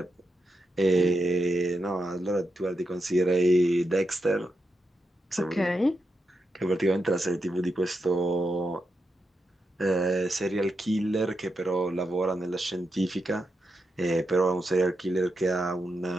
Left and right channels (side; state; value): both; normal; correlation 0.86